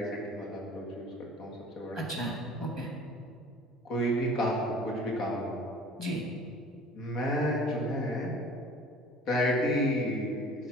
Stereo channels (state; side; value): normal; both; correlation 0.47